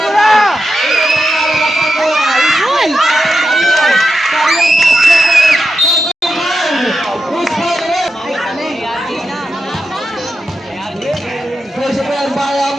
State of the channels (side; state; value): both; normal; correlation 0.88